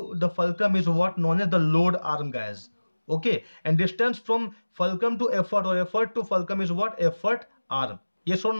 the fulcrum is what, known as the load arm, guys. Okay, and distance from fulcrum to effort or effort to fulcrum is what, effort arm. Yes or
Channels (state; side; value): inverted; both; correlation -1.00